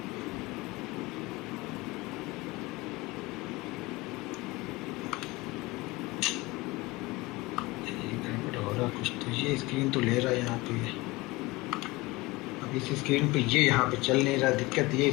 हो रहा कुछ, तो ये स्क्रीन तो ले रहा है यहाँ पे, अब इस स्क्रीन पे ये यहाँ पे चल नहीं रहा। दिक्कत ये,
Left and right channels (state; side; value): quieter; right; 22.1 dB